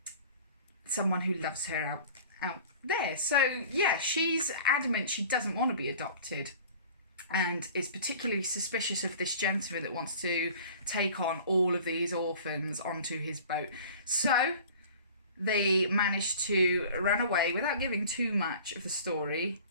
someone who loves her out there. So yeah, she's adamant she doesn't want to be adopted and is particularly suspicious of this gentleman that wants to take on all of these orphans onto his boat. So they managed to run away without giving too much of the story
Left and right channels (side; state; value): both; inverted; correlation -0.44